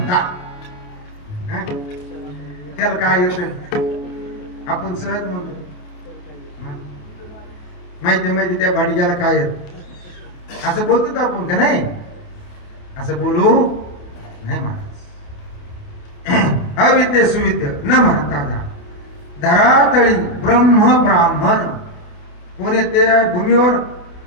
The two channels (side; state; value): right; late; 28 ms